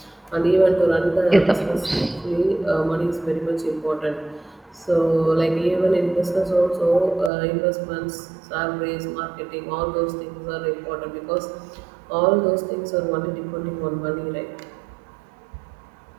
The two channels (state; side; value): drops out; left; at 7.3 s